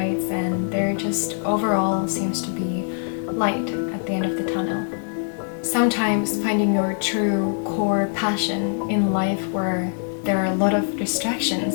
and there just overall seems to be light at the end of the tunnel. Sometimes finding your true core passion in life where there are a lot of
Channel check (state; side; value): silent; right; 63 dB below the other